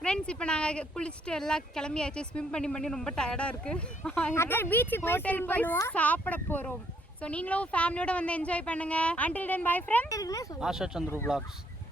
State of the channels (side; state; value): both; normal; correlation 0.69